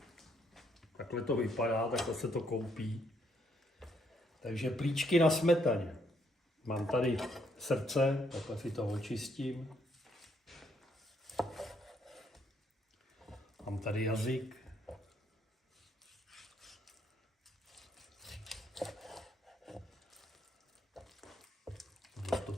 Takhle to vypadá, takhle se to koupí. Takže plíčky na smetaně. Mám tady srdce, takhle si to očistím. Mám tady jazyk. To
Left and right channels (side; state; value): both; normal; correlation 0.71